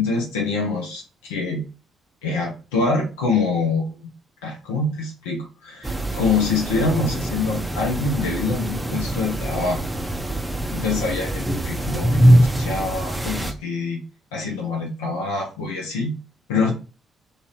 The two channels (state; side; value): normal; both; correlation 0.66